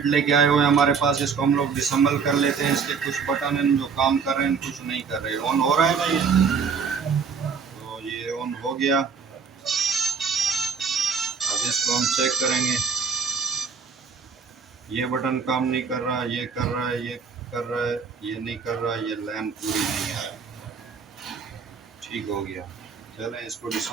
लेके आए हुए हैं हमारे पास। इसको हम लोग डिसम्बल कर लेते हैं। इसके कुछ बटन हैं जो काम कर रहे हैं, कुछ नहीं कर रहे। ऑन हो रहा है ना ये, तो ये ऑन हो गया। अब इसको हम चेक करेंगे। ये बटन काम नहीं कर रहा, ये कर रहा है, ये कर रहा है, ये नहीं कर रहा, ये लाइन पूरी नहीं आ रहा। ठीक हो गया। चलें इसको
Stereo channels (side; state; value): left; quieter; 5.9 dB